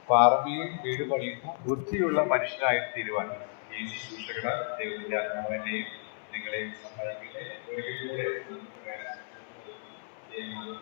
പാറമേൽ വീട് പണിയുന്ന ബുദ്ധിയുള്ള മനുഷ്യനായിട്ട് തീരുവാൻ ഈ ശുശ്രൂഷകളാൽ ദൈവത്തിന്റെ ആത്മാവിനെയും നിങ്ങളെയും സഹായിക്കട്ടെ. ഒരിക്കൽ കൂടെ നന്ദി പ്രകാശിപ്പിച്ചുകൊണ്ട് നിർത്തുന്നു. ദൈവനാമം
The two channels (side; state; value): right; silent; 57 dB below the other